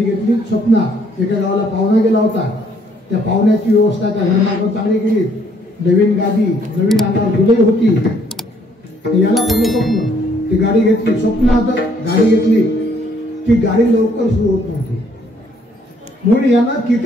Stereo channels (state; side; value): normal; both; correlation 0.66